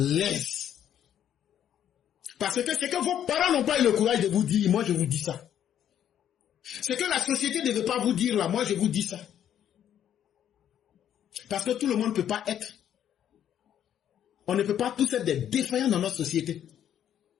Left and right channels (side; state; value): right; quieter; 10.1 dB